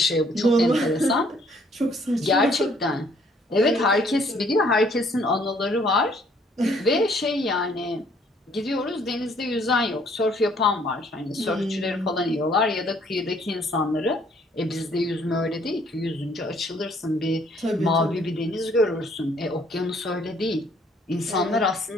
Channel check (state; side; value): normal; both; correlation 0.63